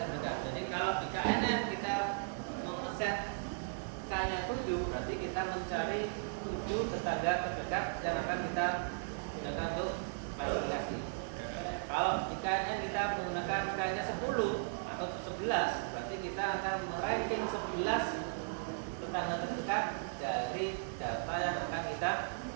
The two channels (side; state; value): left; silent; digital silence